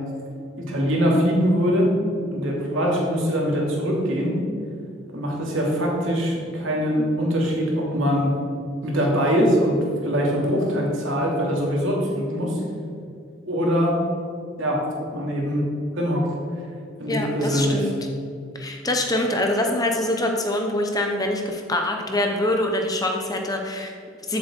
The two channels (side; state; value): both; normal; correlation 0.55